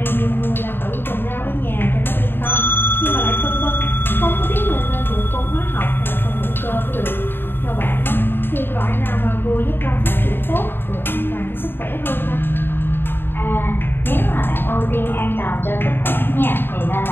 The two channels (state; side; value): late; right; 0.10 ms